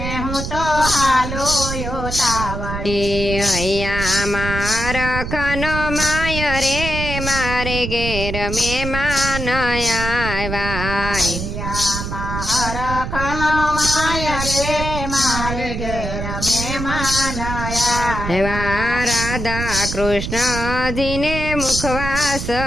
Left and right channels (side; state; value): right; noise; rumble, 5 dB below the sound